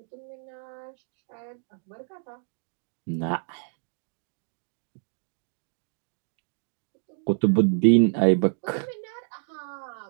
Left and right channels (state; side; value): silent; left; 59 dB below the other